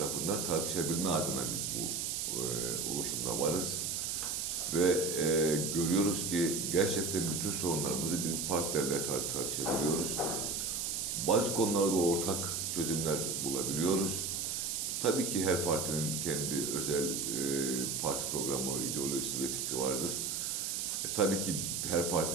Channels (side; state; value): right; noise; hiss, 1 dB below the sound